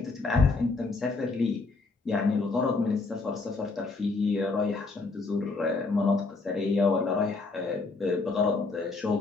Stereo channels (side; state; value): right; quieter; 3.8 dB